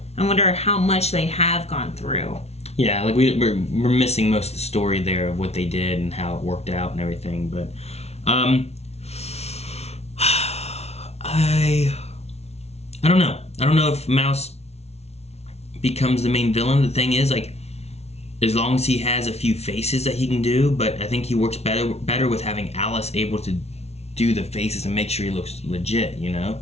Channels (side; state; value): right; late; 0.31 ms